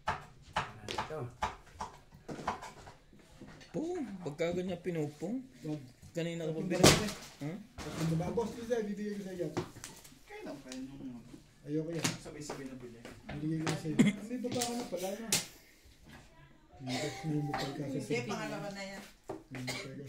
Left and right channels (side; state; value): both; identical; correlation 1.00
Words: Ito. Pong, pagka ganyan pinupong. Kanina ka pa Tatlong pinupong. Huh? Tatlong ba? Boss, Lisa, bibigay ko sa iyo. Kaya lang pa yun. Ayoko yan. Sabay-sabay na bili. Bibigay ko sa iyo. May baba ka na pala na. May bukal ka sa Sige, pangalawa na yan. May bukal ka